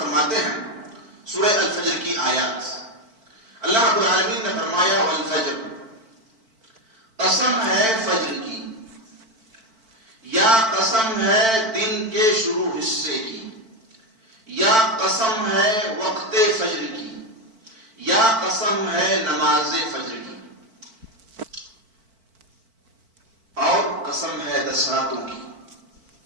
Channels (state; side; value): late; left; 4.5 ms